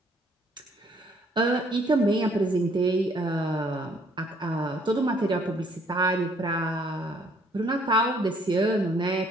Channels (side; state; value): both; normal; correlation 0.63